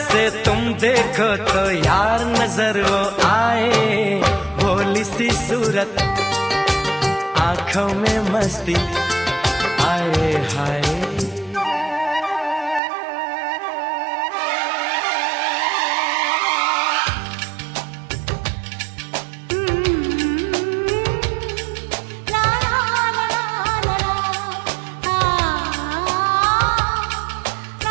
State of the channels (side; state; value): left; drops out; at 12.8 s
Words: तुम देखो तो यार नजर वो आए। भोली सी सूरत, आंखों में मस्ती, आए हाय।